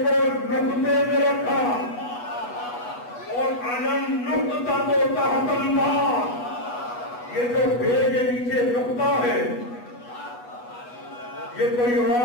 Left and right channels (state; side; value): late; right; 8.2 ms